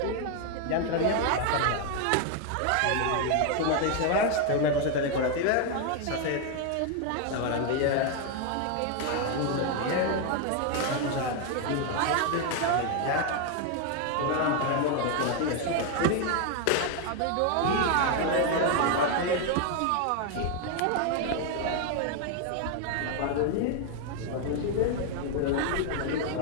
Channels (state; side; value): different; both; correlation 0.01